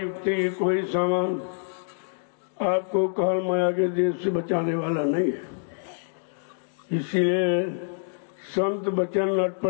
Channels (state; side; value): silent; right; digital silence